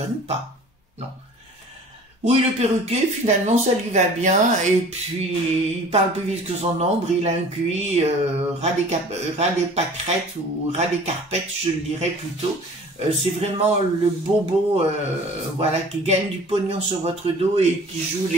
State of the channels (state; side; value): normal; both; correlation 0.46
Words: pas, non. Oui, le perruquier, finalement, ça lui va bien, et puis, il parle plus vite que son ombre, il a un QI ras des pâquerettes, ou ras des carpettes, je le dirais plutôt, c'est vraiment le bobo, voilà, qui gagne du pognon sur votre dos et qui joue